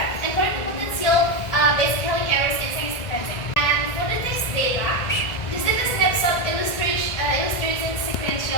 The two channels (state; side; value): late; right; 1.7 ms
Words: and correcting potential base calling errors in second sequencing. And for the text data, this is a snapshot illustrating